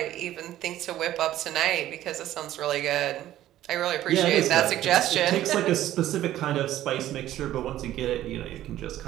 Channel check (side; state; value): left; quieter; 13.4 dB